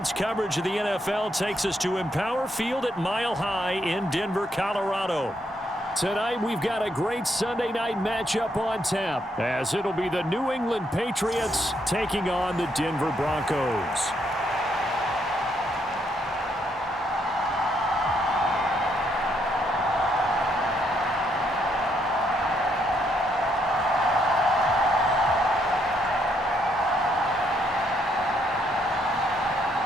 coverage of the NFL takes us to Empower Field at Mile High in Denver, Colorado. Tonight, we've got a great Sunday night matchup on tap, as it'll be the New England Patriots taking on the Denver Broncos.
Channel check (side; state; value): both; normal; correlation 0.74